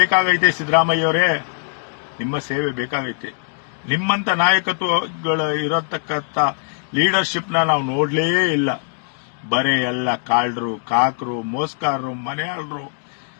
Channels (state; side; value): silent; right; digital silence